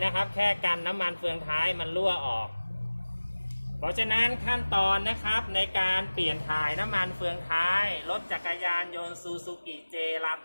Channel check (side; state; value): both; inverted; correlation -1.00